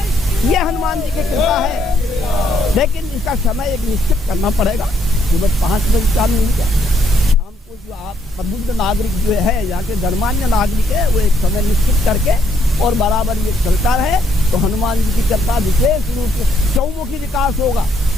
ये हनुमान जी की कृपा है। लेकिन इसका समय एक निश्चित करना पड़ेगा। सुबह 5 बजे शाम नहीं क्या, शाम को जो आप प्रबुद्ध नागरिक जो है, यहाँ के गणमान्य नागरिक है, वो एक समय निश्चित करके और बराबर ये चलता रहे तो हनुमान जी की कृपा विशेष रूप से चौमुखी विकास होगा।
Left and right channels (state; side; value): normal; both; correlation 0.71